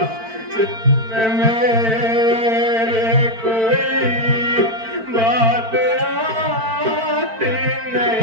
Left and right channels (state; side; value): late; left; 4.5 ms